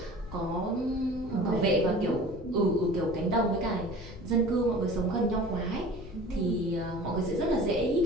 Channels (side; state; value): left; noise; rumble, 15 dB below the sound